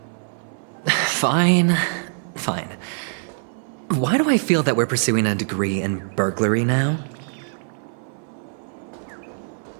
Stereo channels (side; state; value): left; silent; 63 dB below the other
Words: Fine. Fine. Why do I feel that we're pursuing a degree in burglary now?